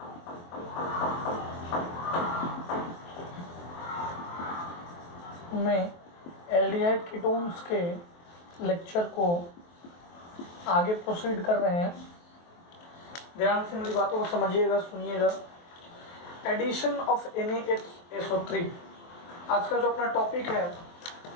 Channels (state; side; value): late; right; 23 ms